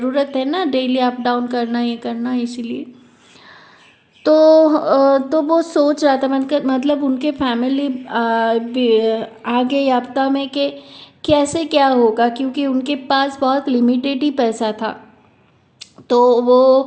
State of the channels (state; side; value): identical; both; correlation 1.00